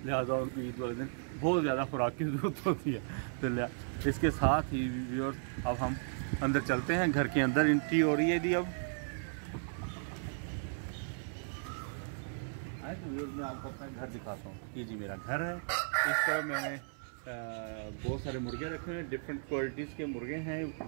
लिहाजा उनको ईद वाले दिन बहुत ज़्यादा खुराक की ज़रूरत होती है। तो इसके साथ ही व्यूअर्स अब हम अंदर चलते हैं। घर के अंदर एंट्री हो रही है जी। अब आए तो व्यूअर्स मैं आपको अपना घर दिखाता हूँ। ये जी मेरा घर है। इस तरह मैंने बहुत सारे मुर्गे रखे हैं, डिफरेंट क्वालिटीज़ के मुर्गे हैं,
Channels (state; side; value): silent; left; 54 dB below the other